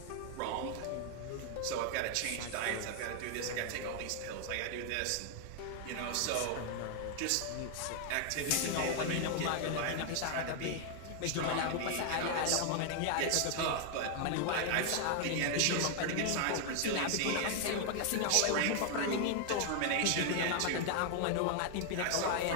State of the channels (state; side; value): different; both; correlation 0.00